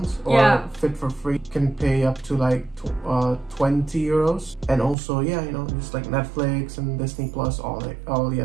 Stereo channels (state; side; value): drops out; left; at 5.0 s